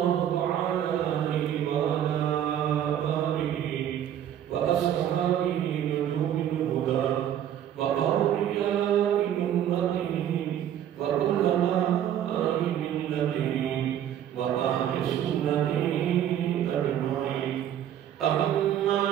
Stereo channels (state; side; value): quieter; left; 10.5 dB